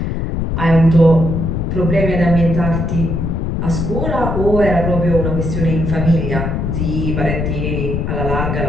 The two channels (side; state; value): left; noise; rumble, 1 dB below the sound